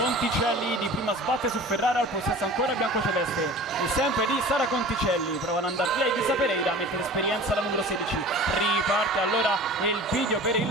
di prima sbatte su Ferrara, al possesso ancora biancoceleste e sempre di Sara Conticelli, provano ad andare via Elisa Pereira, mette l'esperienza la numero 16, riparte allora il video per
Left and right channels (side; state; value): both; normal; correlation 0.40